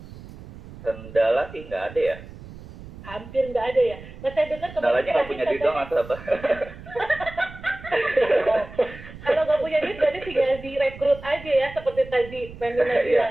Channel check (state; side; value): noise; right; rumble, 16 dB below the sound